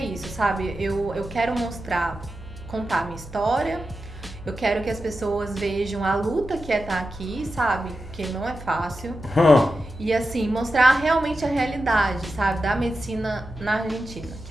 isso, sabe? Eu quero contar a minha história. Eu quero que as pessoas vejam a luta que é estar aqui, sabe? Que não é fácil. E assim, mostrar realmente a realidade, sabe? Da medicina na Argentina, que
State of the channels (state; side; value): normal; both; correlation 0.90